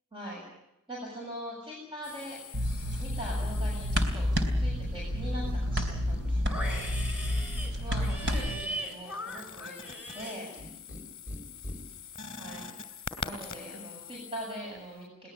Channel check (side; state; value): both; normal; correlation 0.75